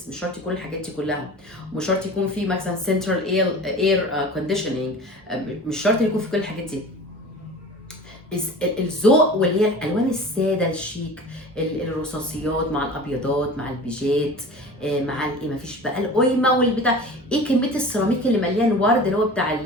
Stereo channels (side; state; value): both; normal; correlation 0.37